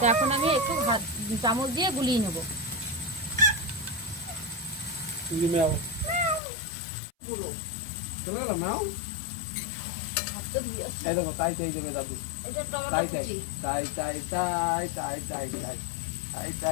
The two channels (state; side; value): drops out; right; at 6.4 s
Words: এখন আমি একটু চামচ দিয়ে গুলিয়ে নেব। চলে গেলাম না, এই দেখো তাই তাই দেবে দাদু, এটা টমেটো তাই কুচি, তাই তাই তাই তাই তাই তাই তাই